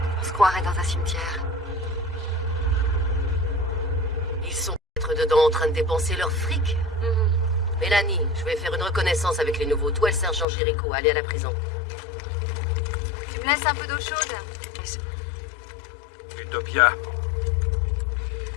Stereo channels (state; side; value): drops out; right; at 10.5 s